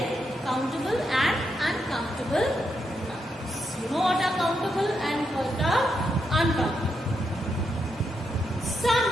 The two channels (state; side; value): normal; both; correlation 0.82